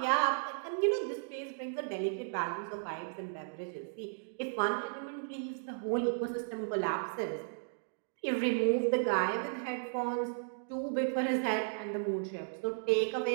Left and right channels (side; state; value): left; silent; digital silence